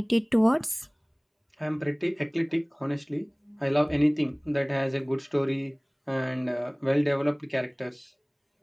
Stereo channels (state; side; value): identical; both; correlation 1.00